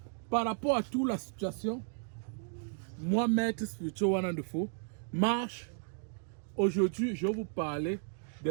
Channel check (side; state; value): left; silent; 55 dB below the other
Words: par rapport à toute la situation, moi, maître spirituel One and the Four, Marche, aujourd'hui, je vais vous parler